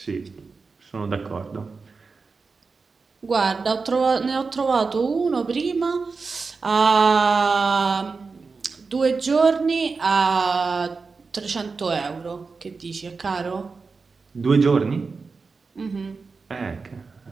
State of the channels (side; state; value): left; quieter; 4.5 dB